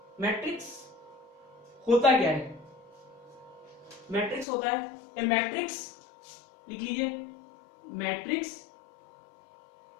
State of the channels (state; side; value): drops out; right; at 4.5 s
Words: मैट्रिक्स होता क्या है? मैट्रिक्स होता है ए मैट्रिक्स, लिख लीजिए, matrix